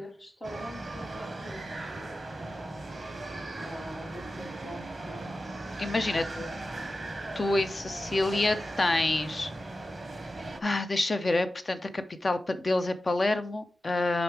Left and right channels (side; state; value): both; normal; correlation 0.93